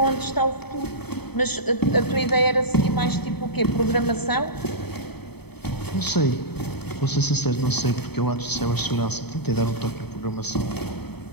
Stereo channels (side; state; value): right; late; 0.97 ms